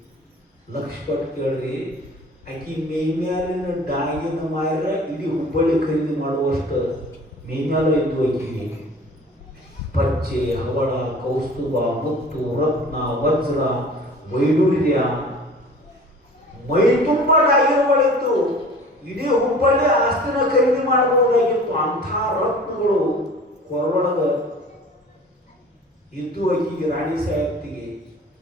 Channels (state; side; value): normal; both; correlation 0.45